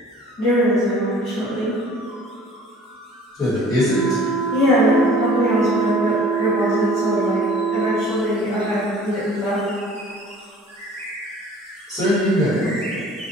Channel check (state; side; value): normal; both; correlation 0.49